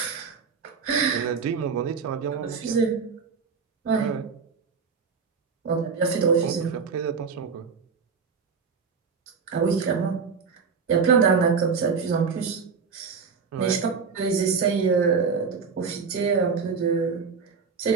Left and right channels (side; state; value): left; quieter; 5.5 dB